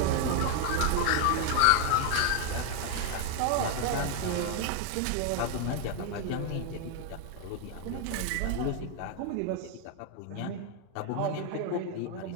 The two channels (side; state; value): both; different; correlation 0.01